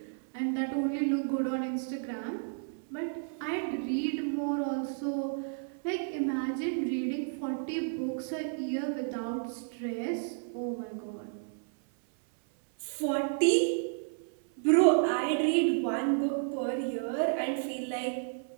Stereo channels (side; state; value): left; silent; 56 dB below the other